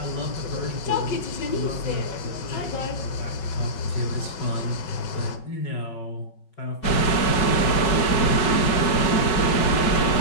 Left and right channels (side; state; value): right; late; 5.4 ms